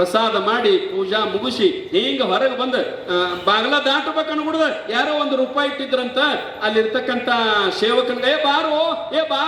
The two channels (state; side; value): identical; both; correlation 1.00